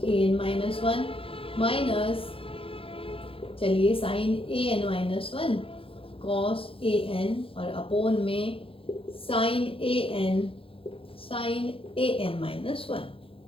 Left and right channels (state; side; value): late; right; 0.27 ms